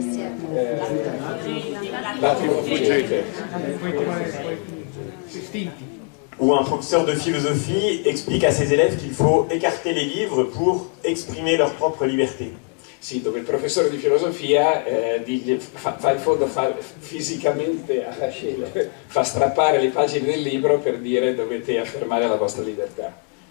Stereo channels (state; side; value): quieter; right; 36.7 dB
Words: Où un professeur de philosophie explique à ses élèves qu'il faut écarter les livres pour exprimer leur propre liberté. Sì, dove il professore di filosofia fa in fondo fisicamente fa strappare le pagine del libro per dire dovete affermare la vostra libertà.